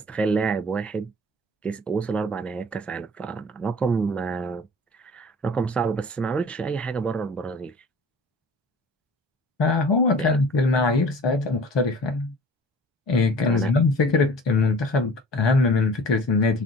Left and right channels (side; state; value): both; normal; correlation 0.45